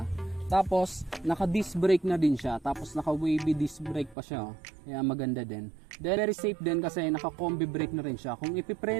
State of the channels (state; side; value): drops out; left; at 4.2 s